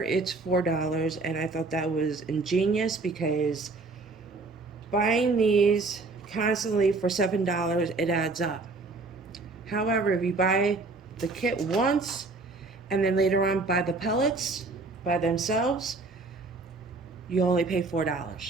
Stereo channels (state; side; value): quieter; left; 3.6 dB